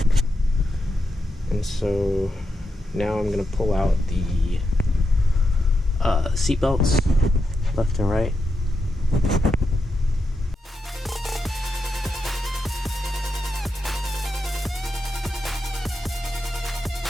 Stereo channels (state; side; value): normal; both; correlation 0.86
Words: And so now I'm going to pull out the seat belts left and right.